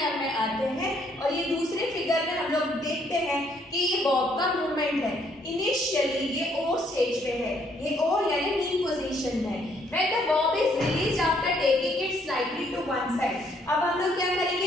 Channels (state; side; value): normal; both; correlation 0.68